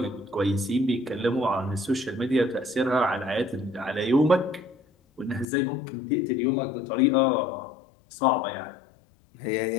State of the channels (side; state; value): right; drops out; at 5.5 s